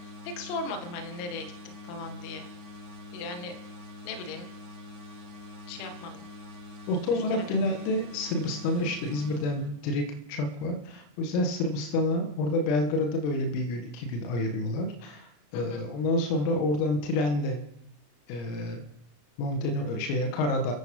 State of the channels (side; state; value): right; late; 34 ms